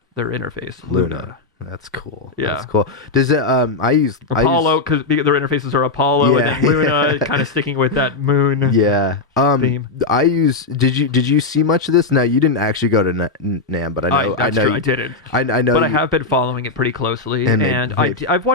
their interface. Luna. That's cool. Yeah. That's cool. Does it I use Apollo, because their interfaces are Apollo, and then Luna, kind of sticking with that moon theme. I use did you see much of this? No, you didn't actually go to NAMM, but I know I didn't. I know, but I have been following it pretty closely, and I've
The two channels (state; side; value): quieter; right; 3.7 dB